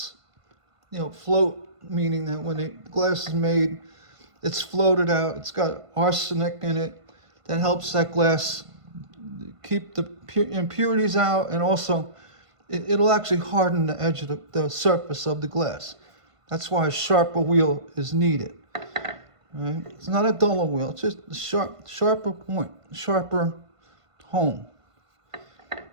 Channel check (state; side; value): late; left; 1.5 ms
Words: Float meaning that when the glass is made, it's floated out. It's got arsenic in it that helps that glass keep the impurities out, and also it'll actually harden the edge of the surface of the glass. That's why a sharper wheel is needed. Right? It's not a duller wheel. It's just a sharper point, sharper hone.